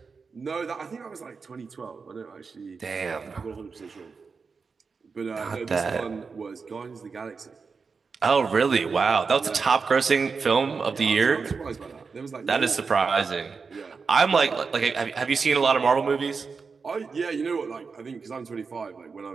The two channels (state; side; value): quieter; left; 5.0 dB